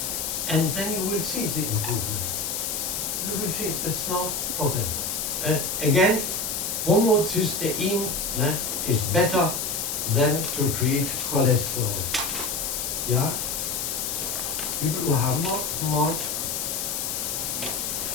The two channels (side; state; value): left; noise; hiss, 2 dB below the sound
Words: and then you will see the improvement. You will see, that's no problem. Again, homocysteine is better than to treat cholesterol. Yeah? Wie viel Uhr haben wir morgens?